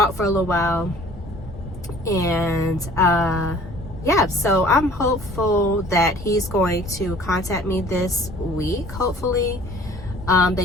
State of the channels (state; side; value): normal; both; correlation 0.51